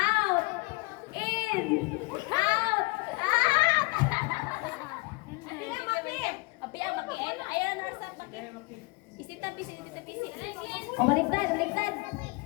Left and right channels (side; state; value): right; quieter; 25.8 dB